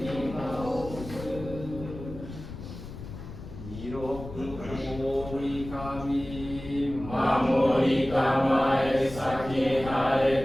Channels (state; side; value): noise; left; rumble, 12 dB below the sound